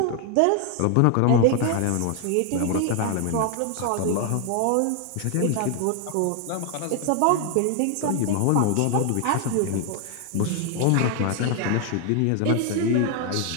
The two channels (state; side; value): different; both; correlation 0.00